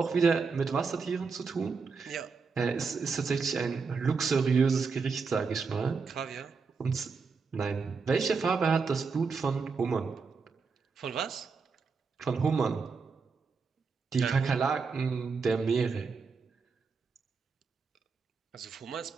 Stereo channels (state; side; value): quieter; left; 5.0 dB